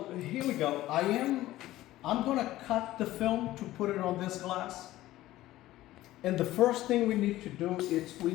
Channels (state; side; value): quieter; right; 15.7 dB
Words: here we go. I'm gonna cut the film to put it on this glass. And the first thing we need to do is we